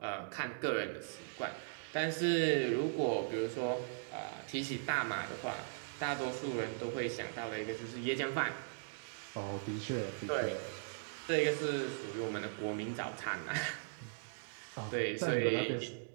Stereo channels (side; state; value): left; silent; digital silence